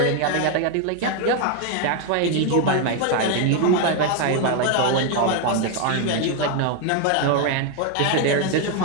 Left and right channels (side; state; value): both; different; correlation 0.01